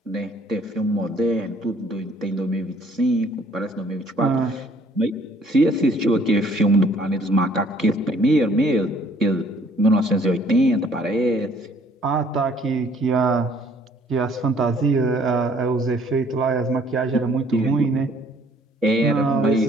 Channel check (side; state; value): both; normal; correlation 0.60